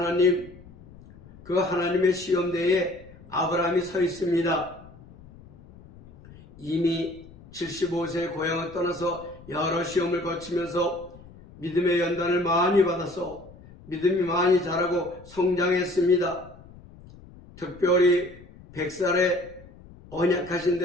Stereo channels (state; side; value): noise; left; rumble, 21 dB below the sound